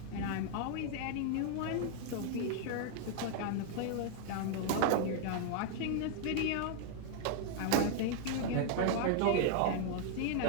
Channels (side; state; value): both; different; correlation 0.00